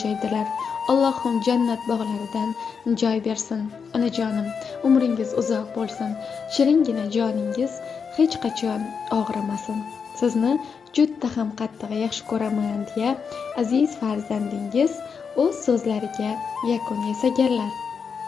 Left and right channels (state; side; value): quieter; right; 6.1 dB